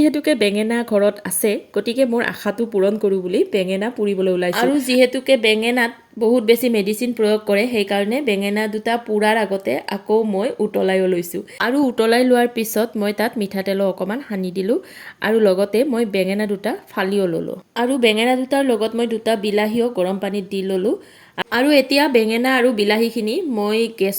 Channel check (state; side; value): identical; both; correlation 1.00